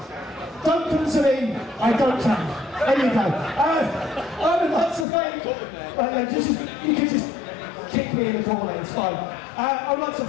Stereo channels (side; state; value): right; drops out; at 5.1 s